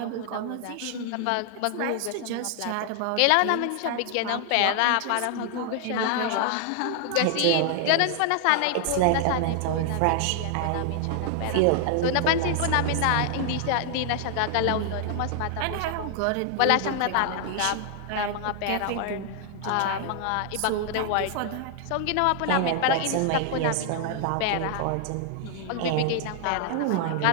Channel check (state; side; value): different; both; correlation 0.00